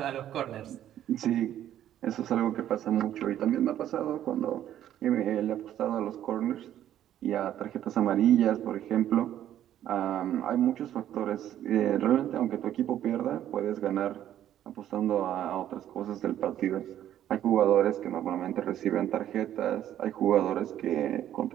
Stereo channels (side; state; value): left; quieter; 11.5 dB